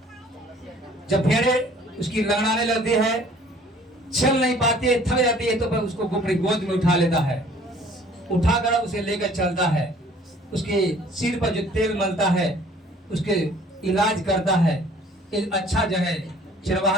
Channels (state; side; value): normal; both; correlation 0.54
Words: जब भेड़े उसकी लंगड़ाने लगती है, चल नहीं पाती है, थक जाती है, तो फिर उसको अपनी गोद में उठा लेता है, उठाकर उसे लेकर चलता है, उसके सिर पर जो तेल मलता है उसके इलाज करता है। एक अच्छा जो है